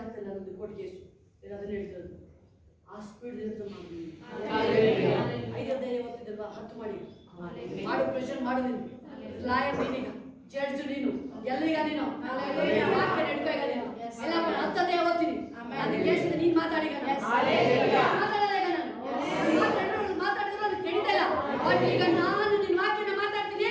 ಆಗ್ತಿಲ್ಲ ನಮ್ಮದು ಕೋರ್ಟ್ ಕೇಸು ಅದನ್ನ ಹೇಳ್ತಿರೋದು. ಆ ಸ್ಪೀಡ್ ಹೇಳ್ತಾ ಮಾಡಿ. 5 ಓದ್ತಿದ್ದಲ್ವಾ 10 ಮಾಡಿ ಮಾಡು, ಪ್ರೆಷರ್ ಮಾಡು. ನೀನು ಲಾಯರ್, ನೀನೀಗ ಜಡ್ಜ್, ನೀನು ಎಲ್ಲಿಗ ನೀನು ವಾಕ್ಯ ನಡ್ಕೋ. ಈಗ ನೀನು ಎಲ್ಲ 10 ಓದ್ತೀನಿ ನನ್ನ ಕೇಸಿನ ನೀನು ಮಾತಾಡಿಗ ಮಾತಾಡಿದ್ರೆ ಅದು ಕೆಡಿತಾ ಇಲ್ಲ. ಬಟ್ ಈಗ ನಾನು ನಿನ್ನ ವಾಕ್ಯನ ಮಾತಾಡ್ತೀನಿ,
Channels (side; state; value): both; identical; correlation 1.00